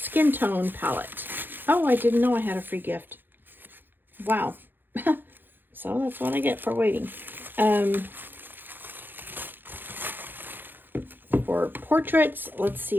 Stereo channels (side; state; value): left; late; 0.094 ms